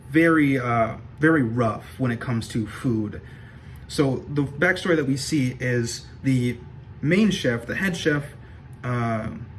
very, very rough when it comes to food. So the backstory that we see is the main chef, the head chef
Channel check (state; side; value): identical; both; correlation 1.00